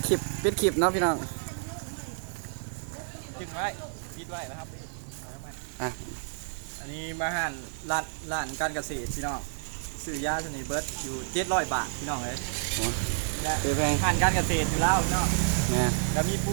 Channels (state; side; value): silent; left; 58 dB below the other